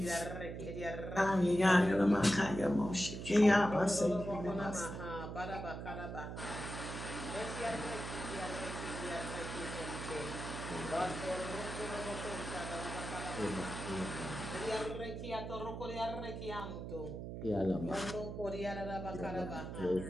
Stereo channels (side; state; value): right; noise; hum, 7 dB below the sound